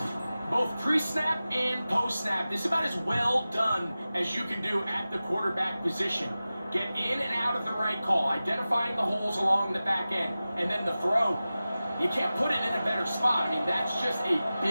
Both pre-snap and post-snap, this is about as well done as you can do at the quarterback position. Get in and out of the right call, identifying the holes along the back end, and then the throw. You can't put it in a better spot. I mean, that's just a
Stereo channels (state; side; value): inverted; both; correlation -0.95